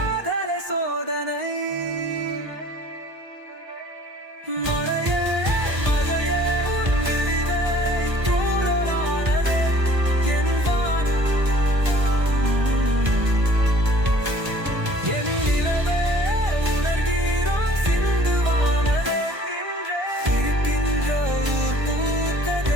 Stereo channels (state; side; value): late; left; 1.4 ms